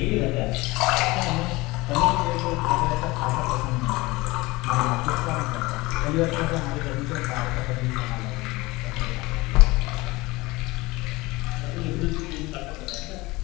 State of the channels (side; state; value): right; quieter; 21.8 dB